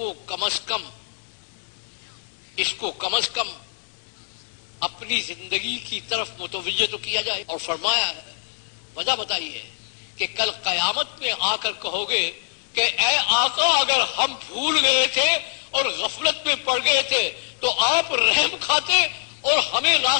کم از کم اپنی زندگی کی طرف متوجہ تو کیا جائے۔ اور فرمایا وجہ بتائی ہے کہ کل قیامت میں آ کر کہو گے کہ اے آقا اگر ہم بھول گئے تھے اور غفلت میں پڑ گئے تھے تو آپ رحم کھاتے اور ہمیں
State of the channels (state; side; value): silent; right; digital silence